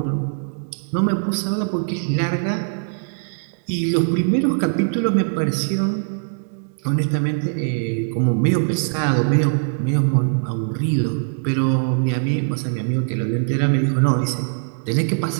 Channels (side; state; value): left; silent; digital silence